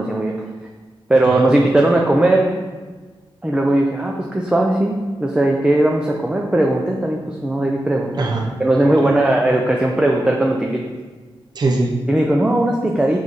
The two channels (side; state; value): both; normal; correlation 0.91